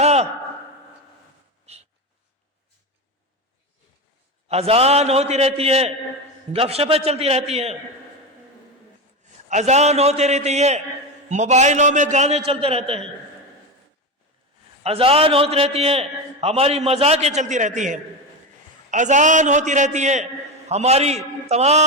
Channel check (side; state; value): both; normal; correlation 0.18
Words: اذان ہوتی رہتی ہے، گپ شپیں چلتی رہتی ہیں، اذان ہوتی رہتی ہے، موبائلوں میں گانے چلتے رہتے ہیں، اذان ہوتی رہتی ہے، ہماری مذاقیں چلتی رہتی ہیں، اذان ہوتی رہتی ہے، ہماری